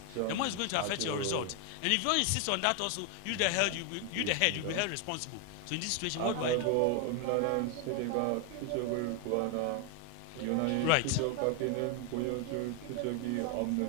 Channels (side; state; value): both; different; correlation 0.00